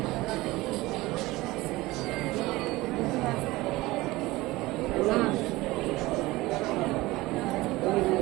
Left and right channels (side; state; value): left; quieter; 19.8 dB